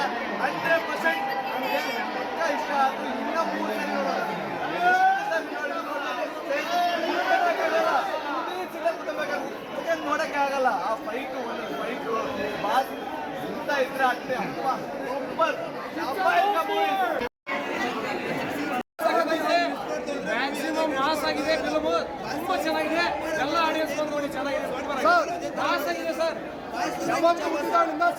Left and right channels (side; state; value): both; identical; correlation 1.00